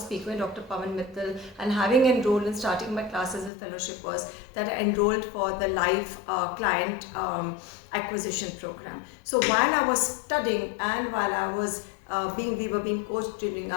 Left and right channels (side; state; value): right; drops out; at 3.5 s